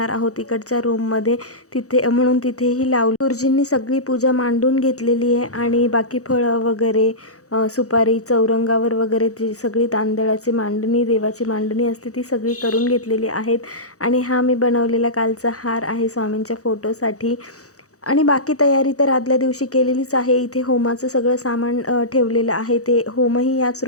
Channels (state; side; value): late; right; 0.65 ms